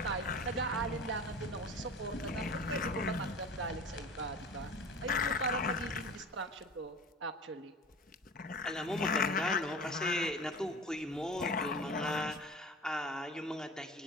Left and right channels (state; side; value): normal; both; correlation 0.37